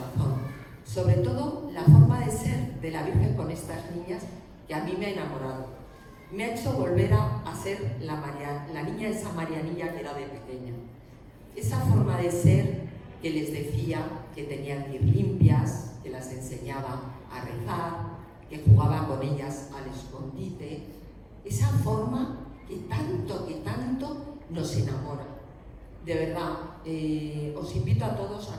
sobre todo la forma de ser de la Virgen con estas niñas que a mí me ha enamorado. Me ha hecho volver a ser la niña esa Marianilla que era de pequeña. Esa forma de ser que les decía que tenían que ir limpias, que las enseñaba a rezar, que jugaba con ellas al escondite. Esa forma que tanto nos enamora. De verdad, os invito a todos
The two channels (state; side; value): identical; both; correlation 1.00